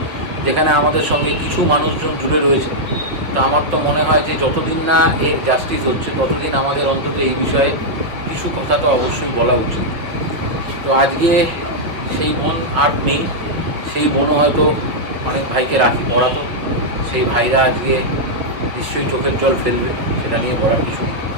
যেখানে আমাদের সঙ্গে কিছু মানুষজন জুড়ে রয়েছে, তো আমার তো মনে হয় যে যতদিন না এর জাস্টিস হচ্ছে ততদিন আমাদের অন্তত এই বিষয়ে কিছু কথা তো অবশ্যই বলা উচিত। তো আজকে সেই বোন আর নেই, সেই বোনও হয়তো অনেক ভাইকে রাখি পড়াতো, সেই ভাইরা আজকে নিশ্চয়ই চোখের জল ফেলবে, সেটা নিয়ে বলার কিছু নেই।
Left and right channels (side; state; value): left; late; 5.2 ms